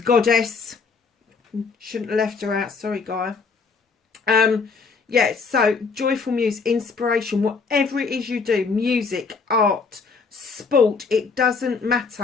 Shouldn't have left her out. Sorry, Gaia. Yeah, so Joyful Muse, inspiration, whatever it is you do, music, art, sport, it doesn't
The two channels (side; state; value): right; quieter; 4.9 dB